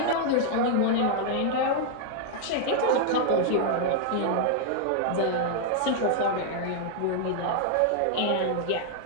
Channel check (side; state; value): both; different; correlation -0.01